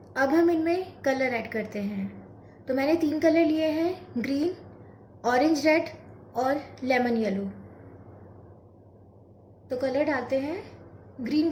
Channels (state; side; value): identical; both; correlation 1.00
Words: अब हम इनमें कलर ऐड करते हैं। तो मैंने 3 कलर लिए हैं, ग्रीन, ऑरेंज रेड और लेमन येलो। तो कलर डालते हैं। ग्रीन